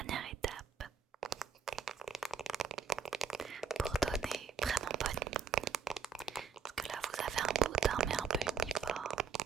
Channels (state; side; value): quieter; left; 6.4 dB